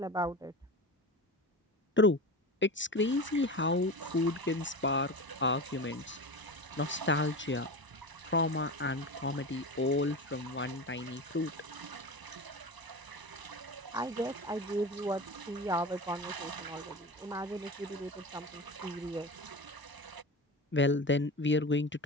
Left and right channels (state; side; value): normal; both; correlation 0.27